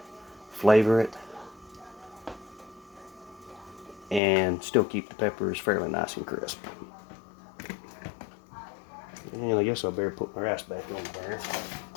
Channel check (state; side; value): drops out; right; at 4.2 s